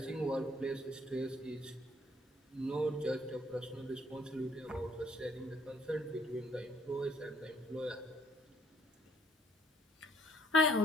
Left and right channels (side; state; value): both; normal; correlation 0.63